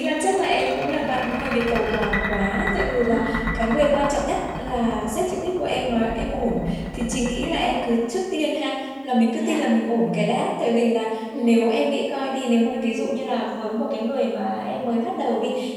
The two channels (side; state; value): both; identical; correlation 1.00